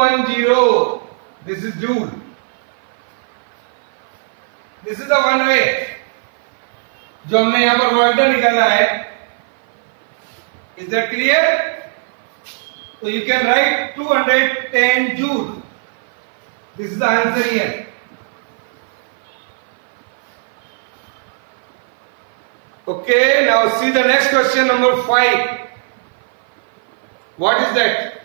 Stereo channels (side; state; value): left; silent; 55 dB below the other